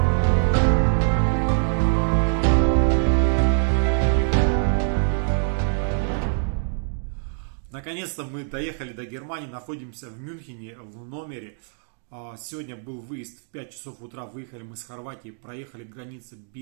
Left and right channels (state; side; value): silent; left; 62 dB below the other